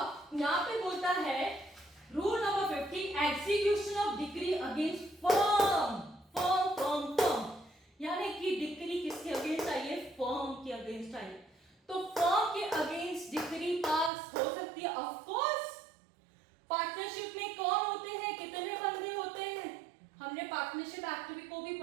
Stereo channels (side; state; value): left; drops out; at 14.1 s